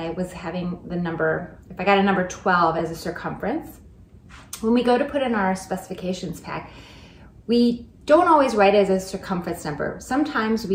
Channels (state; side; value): identical; both; correlation 1.00